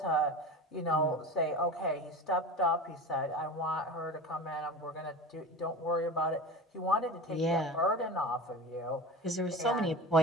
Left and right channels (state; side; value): normal; both; correlation 0.31